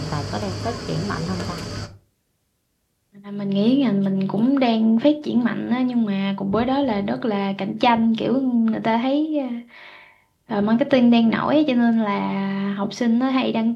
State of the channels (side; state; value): both; identical; correlation 1.00